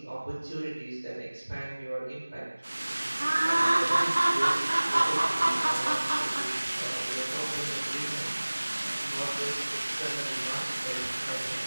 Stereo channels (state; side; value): inverted; both; correlation -1.00